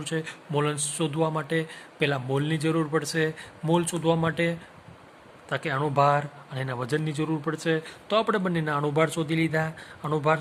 છે. મોલન્સ શોધવા માટે પહેલાં મોલની જરૂર પડશે. મોલ શોધવા માટે તાકે અણુભાર અને એના વજનની જરૂર પડશે. તો આપણે બંનેના અણુભાર શોધી લીધા. અણુભાર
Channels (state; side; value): identical; both; correlation 1.00